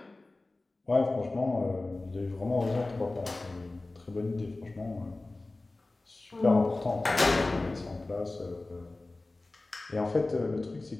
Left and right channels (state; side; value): quieter; right; 3.1 dB